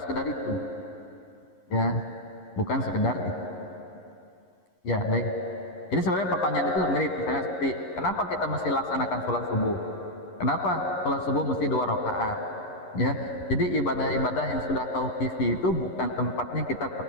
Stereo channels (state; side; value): late; right; 11 ms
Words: sekedar itu. Ya, bukan sekedar itu. Ya, baik. Jadi sebenarnya pertanyaan itu mirip, misalnya seperti kenapa kita mesti laksanakan sholat subuh? Kenapa sholat subuh mesti 2 rakaat? Ya, jadi ibadah-ibadah yang sudah tauqifi itu bukan tempatnya kita